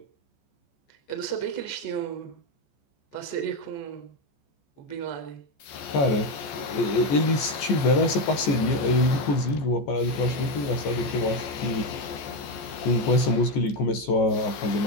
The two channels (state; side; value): late; right; 14 ms